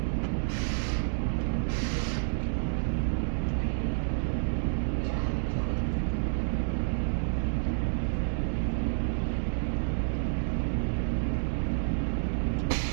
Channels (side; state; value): left; silent; digital silence